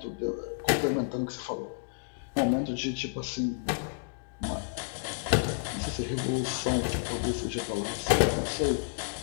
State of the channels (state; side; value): silent; right; digital silence